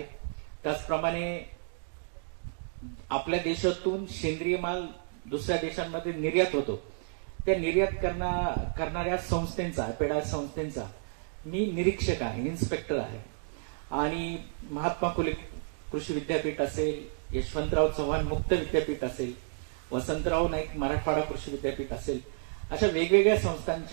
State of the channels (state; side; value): silent; left; digital silence